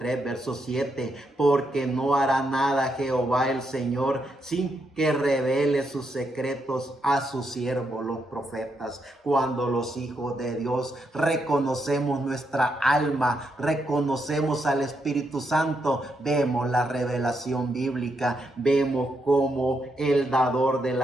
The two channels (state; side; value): normal; both; correlation 0.80